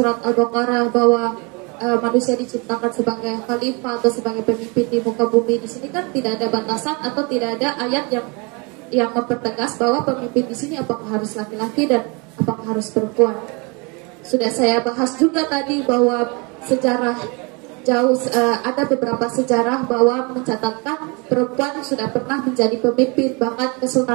Al-Baqarah bahwa manusia diciptakan sebagai khalifah atau sebagai pemimpin di muka bumi. Di sini kan tidak ada batasan atau tidak ada ayat yang mempertegas bahwa pemimpin di sini apakah harus laki-laki dan apakah harus perempuan. Sudah saya bahas juga tadi bahwa sejarah ada beberapa sejarah bahwa mencatatkan perempuan sudah pernah menjadi pemimpin, bahkan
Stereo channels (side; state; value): left; quieter; 30.2 dB